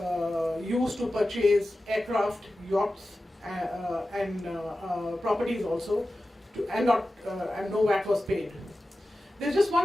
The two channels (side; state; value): both; normal; correlation 0.94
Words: used to purchase aircraft, yachts, and properties also, and no VAT was paid. There's just